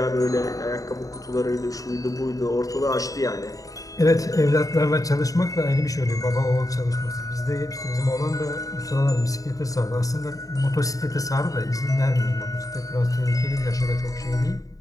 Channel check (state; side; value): late; right; 0.17 ms